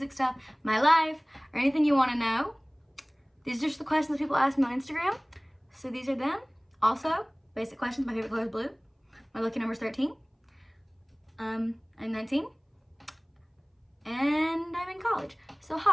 stuff, my life, or anything you want to know. These are just the questions people ask me on Instagram, so these are them. Also, basic questions, my favorite color is blue. My lucky number is 13. I'm 19, and I'm in college. So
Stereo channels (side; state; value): both; identical; correlation 1.00